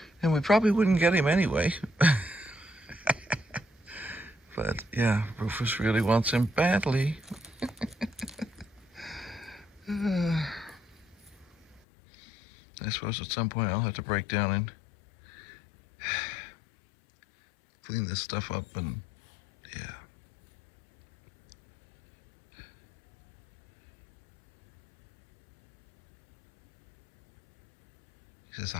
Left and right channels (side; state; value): right; drops out; at 11.8 s